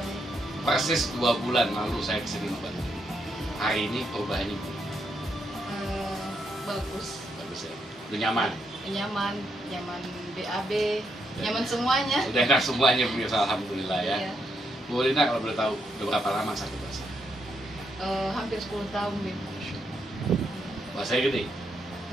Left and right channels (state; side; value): normal; both; correlation 0.79